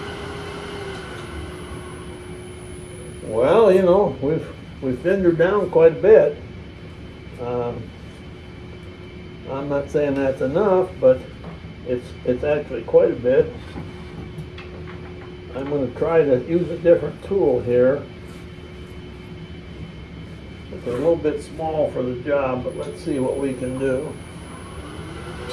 Well, you know, we've thinned her down quite a bit. I'm not saying that's enough, but it's actually quite a bit. I'm going to try to use a different tool here. It's a little bit small for the job, but let's see what we can do.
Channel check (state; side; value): identical; both; correlation 1.00